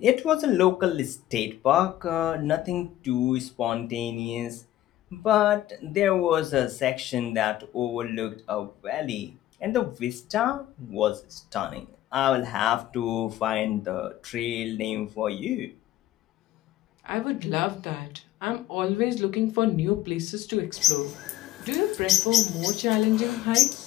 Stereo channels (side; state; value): right; quieter; 14.0 dB